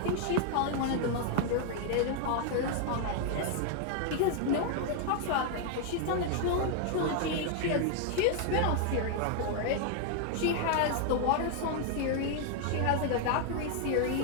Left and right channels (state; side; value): different; both; correlation 0.00